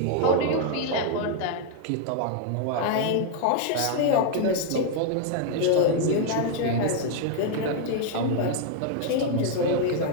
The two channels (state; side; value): different; both; correlation 0.00